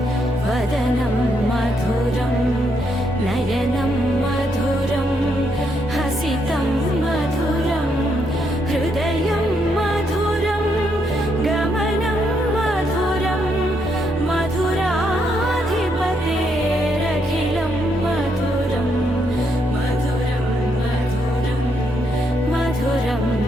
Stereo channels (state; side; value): normal; both; correlation 0.76